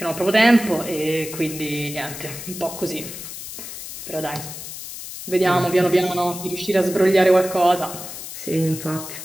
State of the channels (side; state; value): left; noise; hiss, 10 dB below the sound